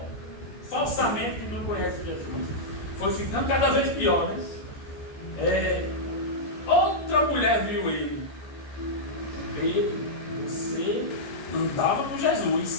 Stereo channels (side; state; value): right; late; 14 ms